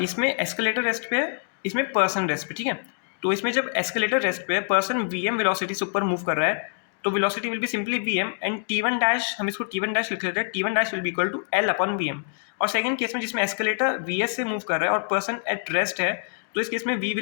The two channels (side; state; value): right; silent; 61 dB below the other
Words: इसमें एस्केलेटर रेस्ट पे है, इसमें पर्सन रेस्ट पे, ठीक है। तो इसमें जब एस्केलेटर रेस्ट पे है, पर्सन vm वेलोसिटी से ऊपर मूव कर रहा है, तो velocity will be simply vm and t1 dash, हम इसको t1 डैश लिख लेते हैं, t1 dash will be equal to l upon vm। और सेकंड केस में जिसमें एस्केलेटर vs से मूव कर रहा है और पर्सन एट रेस्ट है, तो इस केस में v